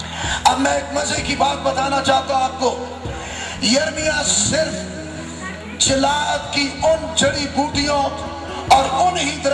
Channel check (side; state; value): both; identical; correlation 1.00